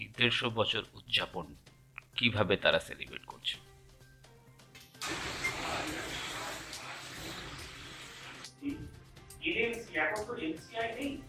150 বছর উদযাপন কিভাবে তারা সেলিব্রেট করছে। এখন তো এনসিআই নেই,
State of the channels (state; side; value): identical; both; correlation 1.00